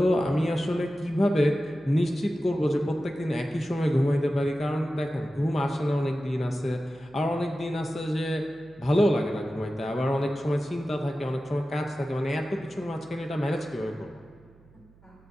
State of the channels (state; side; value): noise; right; hum, 27 dB below the sound